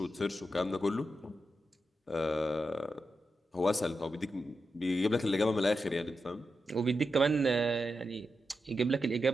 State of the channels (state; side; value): normal; both; correlation 0.88